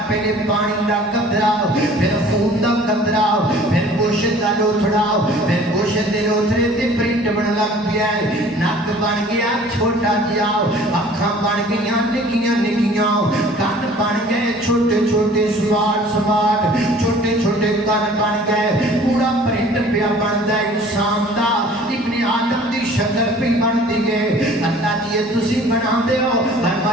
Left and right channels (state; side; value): normal; both; correlation 0.50